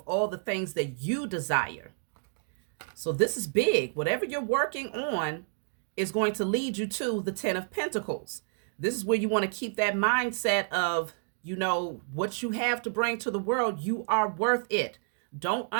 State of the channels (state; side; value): silent; left; digital silence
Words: all the things that you desire. So this is big. Whatever you're working on is going to lead you to the 10 of Pentacles. This is where you want to keep that mindset of, you know, what you have to bring to the world, you are worth it. Don't